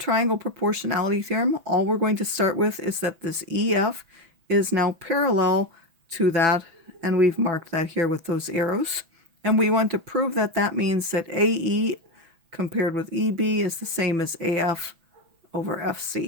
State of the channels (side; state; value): left; late; 6.0 ms